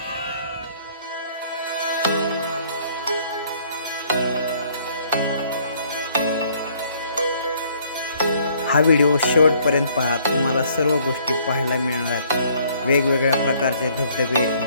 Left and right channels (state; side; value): inverted; both; correlation -0.62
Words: हा व्हिडिओ शेवटपर्यंत पहा. तुम्हाला सर्व गोष्टी पाहायला मिळणार आहेत. वेगवेगळ्या प्रकारचे धबधबे,